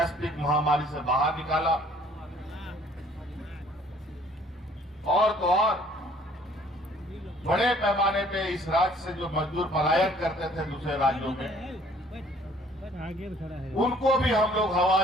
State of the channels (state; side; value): normal; both; correlation 0.57